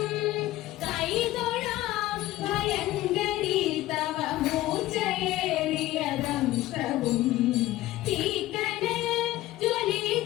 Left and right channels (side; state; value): right; quieter; 16.2 dB